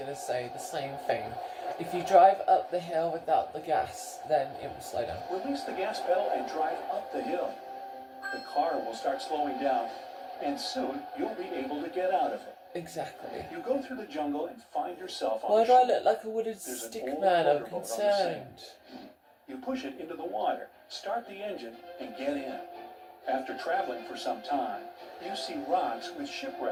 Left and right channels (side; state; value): both; identical; correlation 1.00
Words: to say the same thing. If you drive up the hill without the gas, then it will slow down. Release the gas pedal and drive up the hill. The car will start slowing down, and soon you'll be able to get out of it. Exactly. You go through the jungle and find yourself on Why the do I shore. look like a wooden There's an stick old man? I'm motorboat on the sand. concerned. You push it into the water, start the engine, and get in. After traveling for some time, you see rocks with